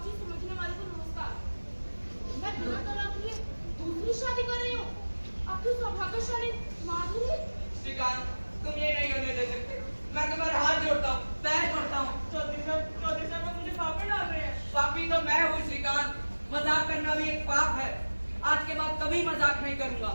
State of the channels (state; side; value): inverted; both; correlation -1.00